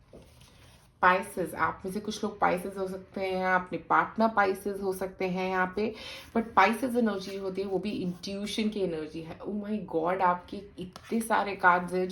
पाइसेस, आप में से कुछ लोग पाइसेस हो सकते हैं, अपने पार्टनर पाइसेस हो सकते हैं यहाँ पे। बट पाइसेस एनर्जी होती है वो भी इंट्यूशन की एनर्जी है। ओ माय गॉड, आपके इतने सारे कार्ड्स हैं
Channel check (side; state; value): both; identical; correlation 1.00